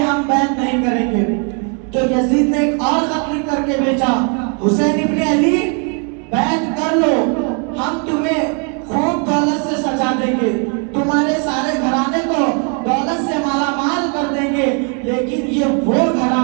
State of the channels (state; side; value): quieter; left; 38.7 dB